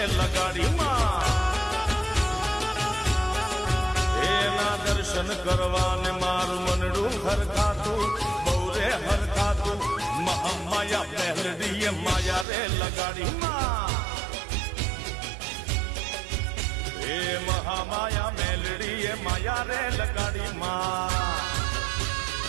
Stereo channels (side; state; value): left; drops out; at 12.5 s